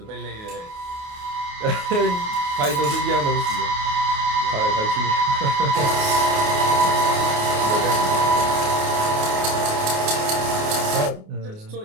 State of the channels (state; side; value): late; left; 28 ms